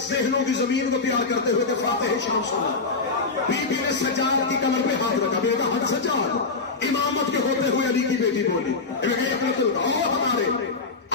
ذہنوں کی زمین کو پیار کرتے ہوئے کہ فاتح شام سنا. بی بی نے سجاد کی کمر پہ ہاتھ رکھا, بیٹا ہاتھ سجاد. امامت کے ہوتے ہوئے علی کی بیٹی بولی ہمارے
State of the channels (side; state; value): right; quieter; 4.2 dB